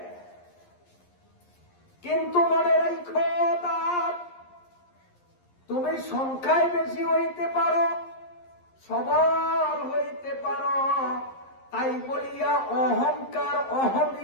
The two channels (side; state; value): right; late; 11 ms